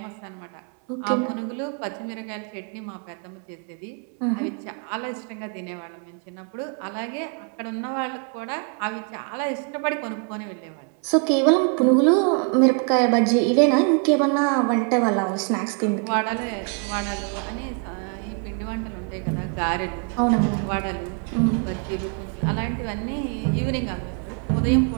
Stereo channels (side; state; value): left; quieter; 39.4 dB